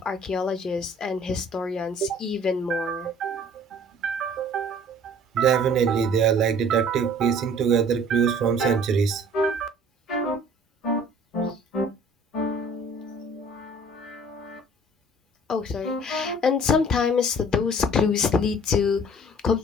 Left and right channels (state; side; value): normal; both; correlation 0.51